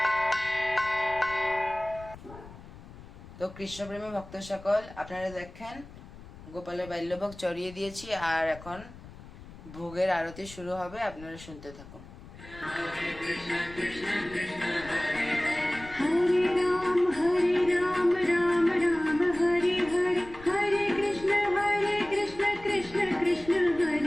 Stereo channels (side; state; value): left; noise; rumble, 17 dB below the sound